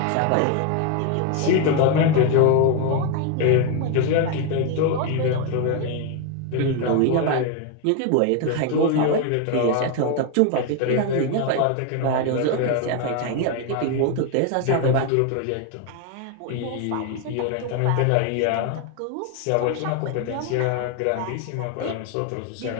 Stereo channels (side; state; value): both; different; correlation 0.01